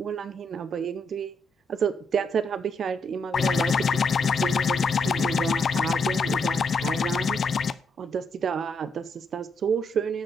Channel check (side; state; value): both; normal; correlation 0.76